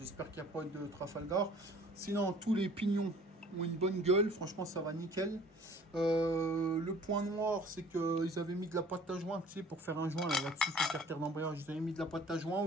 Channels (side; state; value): both; normal; correlation 0.51